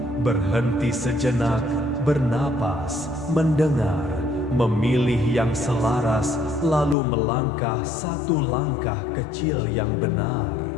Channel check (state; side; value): drops out; right; at 7.0 s